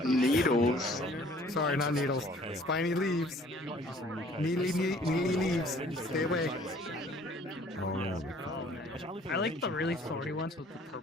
Needles? Sorry, not needles. Spiny leaves. Needly leaves. Stay away. I like the really thorny ones with the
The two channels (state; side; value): normal; both; correlation 0.55